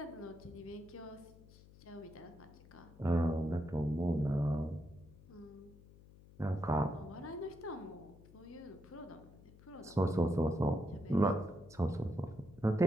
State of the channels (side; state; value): left; noise; hum, 21 dB below the sound